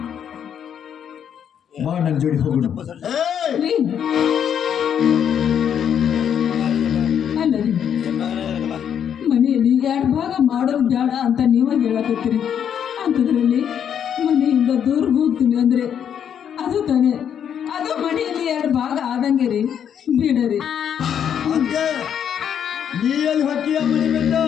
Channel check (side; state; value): right; quieter; 8.6 dB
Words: ಬಾ ನನ್ನ ಜೋಡಿ ಹೋಗೋಣ. ರೀ ಅಲ್ಲ ರೀ, ಮನೆಯಲ್ಲಿ 2 ಭಾಗ ಮಾಡೋದು ಬೇಡ ಅಂತ ನೀವ ಹೇಳಕತ್ತೀರಿ. ಅಂಥದ್ರಲ್ಲಿ ಮನೆಯಿಂದ ದೂರ ಹೋಗ್ತೀನಿ ಅಂದ್ರೆ ಅದು ತಾನೇ, ಅದು ಮನೆಯಲ್ಲಿ 2 ಭಾಗ ಆದಂಗೆ ರೀ. ಬಿಡರಿ ಅಂತೆ ನೀ ಎಲ್ಲಿ ಹಾಕಿಯ ಮನೆ ಬಿಟ್ಟ